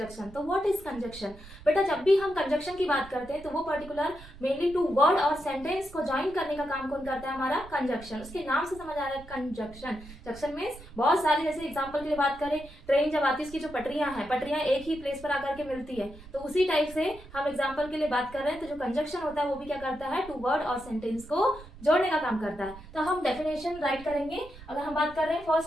तो व्हाट इज कंजक्शन? बेटा, जब भी हम कंजक्शन की बात करते हैं तो वो पर्टिकुलर मेनली टू वर्ड और सेंटेंस को ज्वाइन करने का काम कौन करता है? हमारा कंजक्शन। उसके नाम से समझ आ रहा है कंजक्शन। जंक्शन मीन्स बहुत सारे, जैसे एग्जाम्पल के लिए बात करें, ट्रेन जब आती है उसकी जो पटरियां हैं, पटरियां एक ही प्लेस पर आकर के मिलती है, तो उसी टाइप से हम एग्जाम्पल के लिए बात कर रहे हैं। तो जो कंजक्शन होता है वो भी क्या करता है? टू वर्ड और सेंटेंस को जोड़ने का काम करता है। तो हम डेफिनेशन राइट करेंगे। अगर हम बात कर रहे हैं,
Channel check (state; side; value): noise; right; rumble, 18 dB below the sound